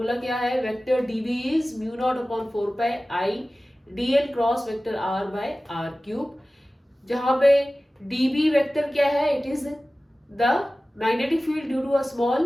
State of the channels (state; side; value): normal; both; correlation 0.96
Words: क्या है? Vector dB is mu not upon 4 pi I dl cross vector r by r cube, जहां पे db वेक्टर क्या है? It is the magnetic field due to a